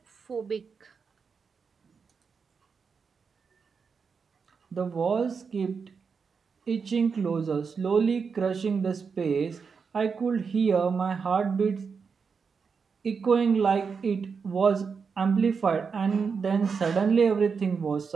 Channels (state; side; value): quieter; left; 5.6 dB